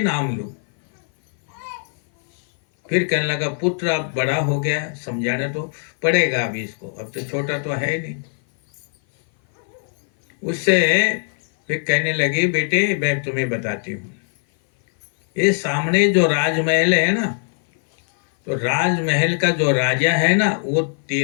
लूं। फिर कहने लगा, पुत्र अब बड़ा हो गया, समझाना तो पड़ेगा अभी इसको, अब तो छोटा तो है नहीं। उससे फिर कहने लगी, बेटे मैं तुम्हें बताती हूँ, ये सामने जो राजमहल है ना, तो राजमहल का जो राजा है ना, वो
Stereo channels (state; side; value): silent; right; 57 dB below the other